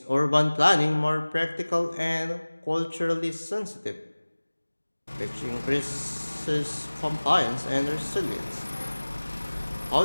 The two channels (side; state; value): both; inverted; correlation -1.00